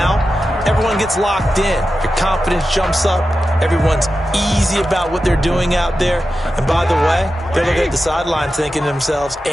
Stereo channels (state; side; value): normal; both; correlation 0.91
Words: everyone gets locked in. Your confidence jumps up. Everyone's easy about what they're doing out there. And by the way, they're looking at the sideline thinking to themselves